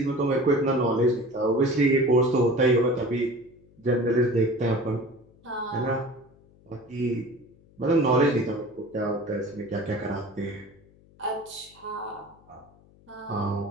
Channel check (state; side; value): noise; left; hum, 28 dB below the sound